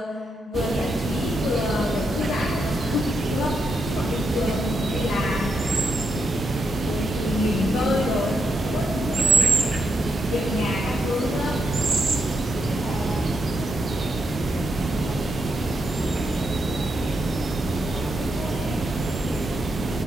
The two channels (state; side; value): normal; both; correlation 0.82